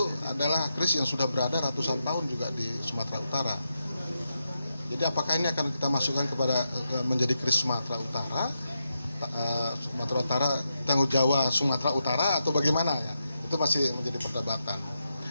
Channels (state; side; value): inverted; both; correlation -0.85